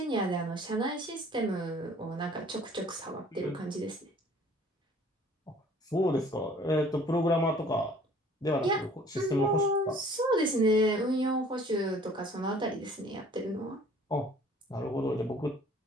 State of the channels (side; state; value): both; normal; correlation 0.53